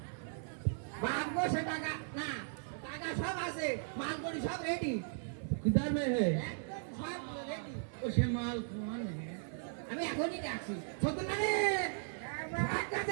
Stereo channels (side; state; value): left; silent; 53 dB below the other